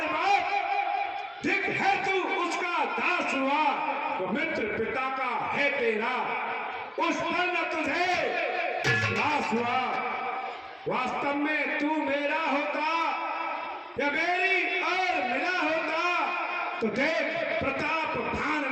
बार ठीक है तू उसका दास हुआ, तो मित्र पिता का है तेरा, उस पर न तुझे विश्वास हुआ। वास्तव में तू मेरा होता या मेरी और मिला होता, तो देख प्रताप भान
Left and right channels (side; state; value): both; identical; correlation 1.00